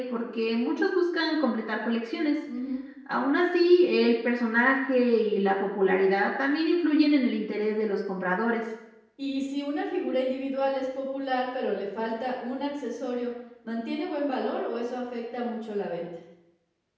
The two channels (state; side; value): identical; both; correlation 1.00